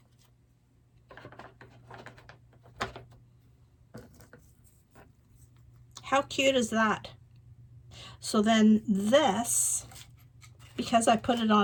How cute is that? So then this, because I put it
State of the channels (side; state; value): both; identical; correlation 1.00